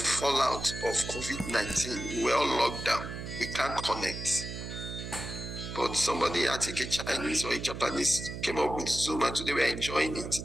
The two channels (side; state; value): right; noise; hum, 8 dB below the sound